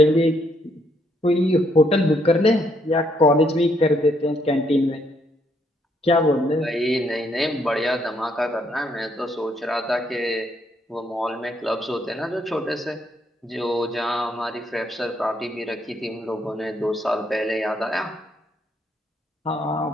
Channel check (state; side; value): normal; both; correlation 0.73